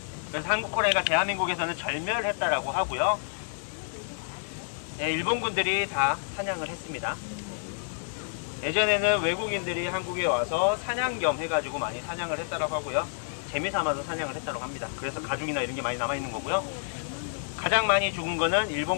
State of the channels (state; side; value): silent; right; digital silence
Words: 그래서 한국 호랑이가 대한민국에서는 절멸했다라고 하고요. 네, 일본군들이 다 사냥을 했습니다. 예전에는 외국인들이 한국에 와서 사냥 겸 해가지고 많이 사냥을 했다라고 하고요. 재미삼아서 사냥을 했다라고 합니다. 그래서 가죽이나 이런 게 많이 남아있는 거고요. 가장 많이 죽은 거는